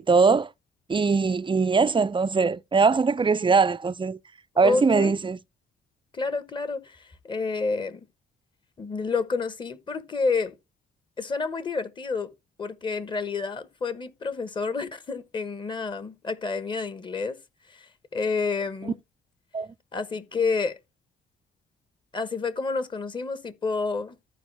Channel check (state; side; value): normal; both; correlation 0.62